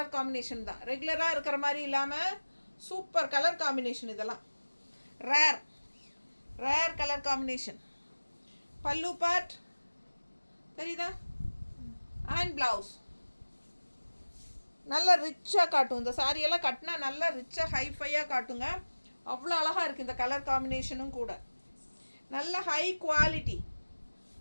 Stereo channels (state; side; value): inverted; both; correlation -1.00